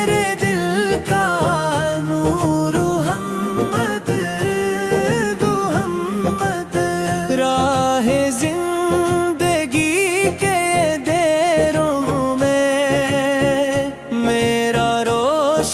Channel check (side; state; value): both; identical; correlation 1.00